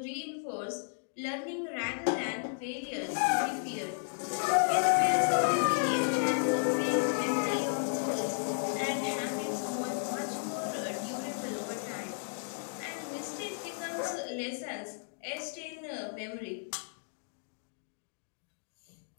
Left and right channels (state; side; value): silent; right; digital silence